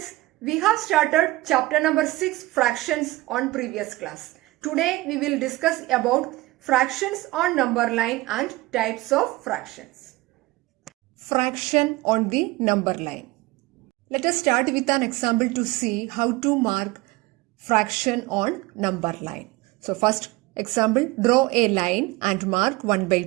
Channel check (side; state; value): left; quieter; 19.9 dB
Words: We have started chapter number 6 fractions on previous class. Today we will discuss about fractions on number line and types of fractions. Fraction on the number line. Let us start with an example to see how to mark fraction on number line. So first example, draw a line and mark 1